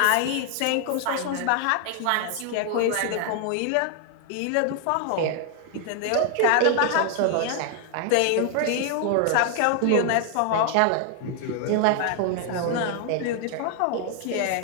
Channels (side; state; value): both; different; correlation 0.00